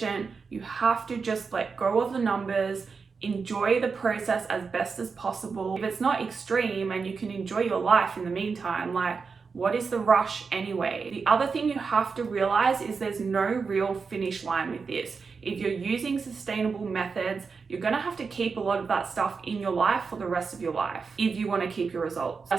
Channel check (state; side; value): quieter; left; 5.1 dB